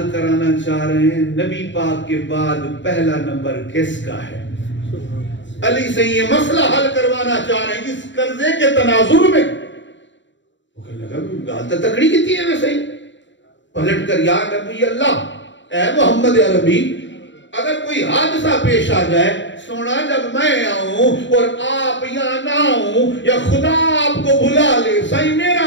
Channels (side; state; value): right; late; 0.54 ms